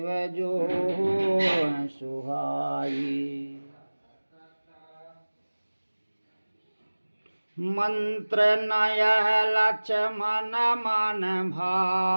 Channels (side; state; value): both; inverted; correlation -1.00